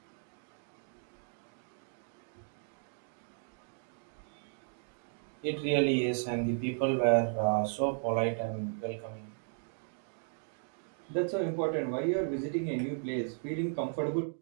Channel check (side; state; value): left; silent; digital silence